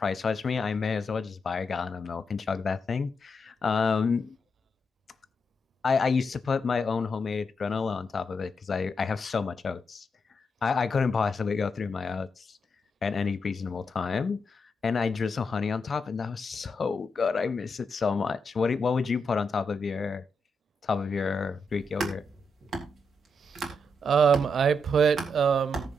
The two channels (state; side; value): normal; both; correlation 0.83